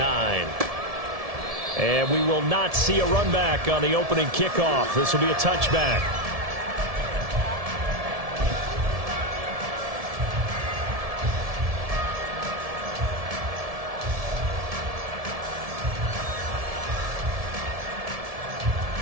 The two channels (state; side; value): late; left; 1.7 ms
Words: And we will not see a run back on the opening kickoff. This will be a touchback.